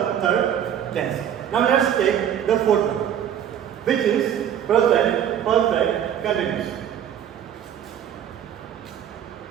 third tense. Now let's take the fourth one, which is present perfect continuous.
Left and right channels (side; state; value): left; quieter; 9.6 dB